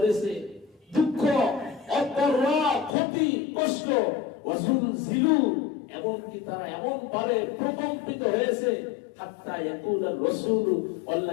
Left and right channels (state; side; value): drops out; right; at 3.0 s